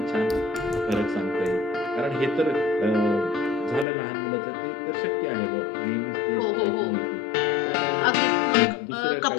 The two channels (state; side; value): drops out; right; at 3.9 s